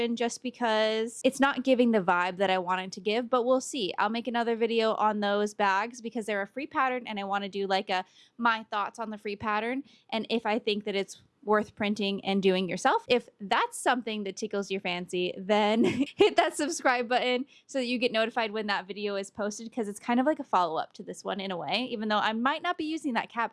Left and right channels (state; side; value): identical; both; correlation 1.00